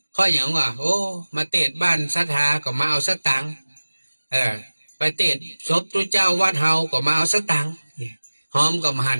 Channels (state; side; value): inverted; both; correlation -1.00